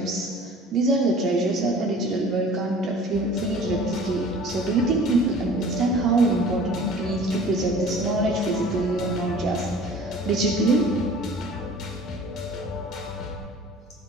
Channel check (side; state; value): both; normal; correlation 0.46